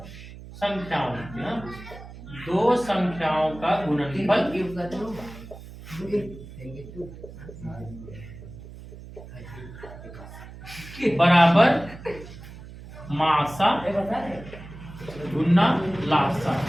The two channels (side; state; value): right; noise; hum, 15 dB below the sound